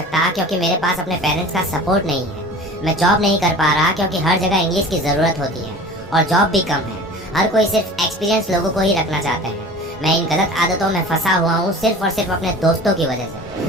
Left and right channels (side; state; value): both; normal; correlation 0.40